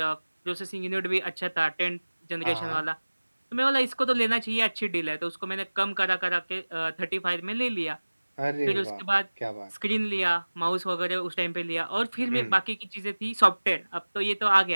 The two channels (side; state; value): both; inverted; correlation -1.00